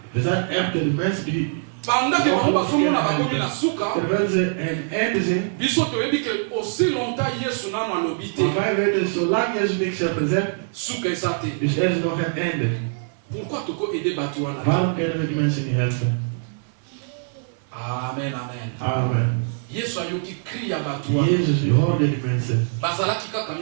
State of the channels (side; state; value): left; silent; 60 dB below the other